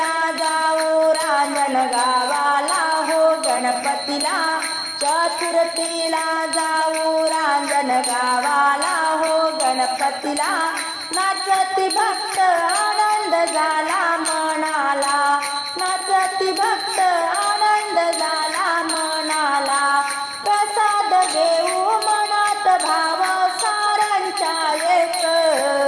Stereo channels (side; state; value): both; identical; correlation 1.00